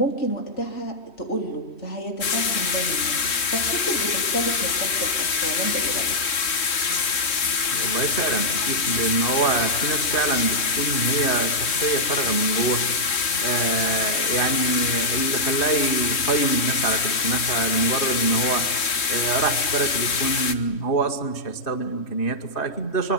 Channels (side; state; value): right; late; 3.1 ms